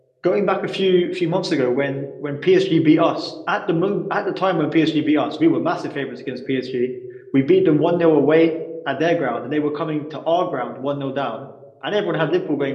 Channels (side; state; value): both; identical; correlation 1.00